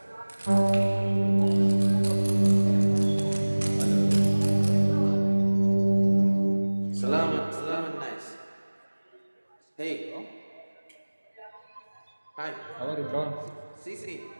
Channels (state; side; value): inverted; both; correlation -1.00